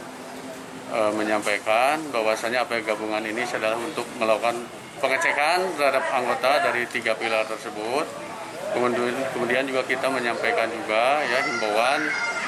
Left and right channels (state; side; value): identical; both; correlation 1.00